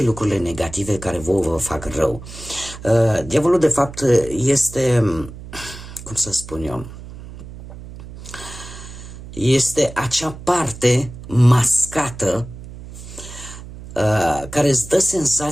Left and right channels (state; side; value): noise; right; hum, 14 dB below the sound